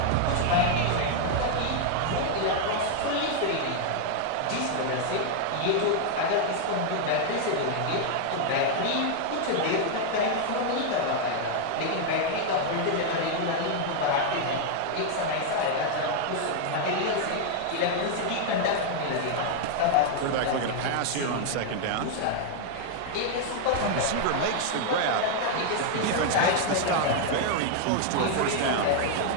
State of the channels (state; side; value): different; both; correlation 0.00